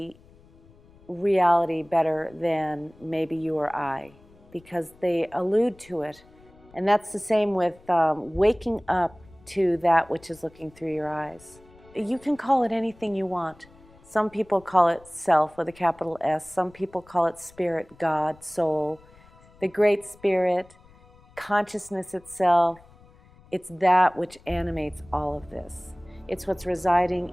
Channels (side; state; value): left; noise; rumble, 26 dB below the sound